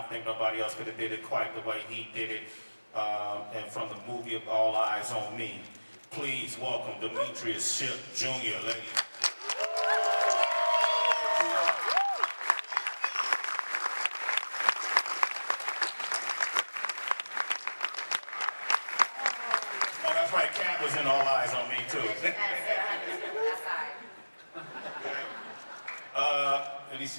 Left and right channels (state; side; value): inverted; both; correlation -1.00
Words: think nobody else could have did it quite the way he did it. And from the movie of All Eyes on Me, please welcome Demetrius Shipp Jr., ladies. Oh, that's right, Cat was in All Eyes on Me, too. Let me